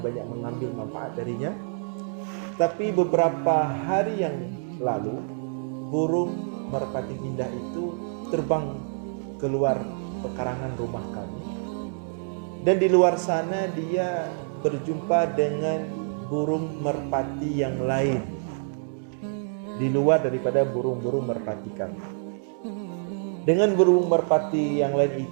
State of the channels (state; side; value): silent; left; digital silence